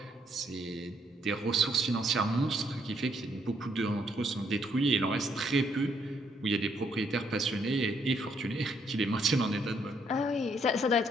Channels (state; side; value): normal; both; correlation 0.71